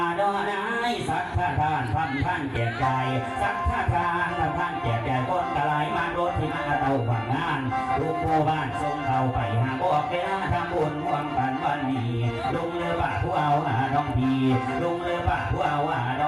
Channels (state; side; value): identical; both; correlation 1.00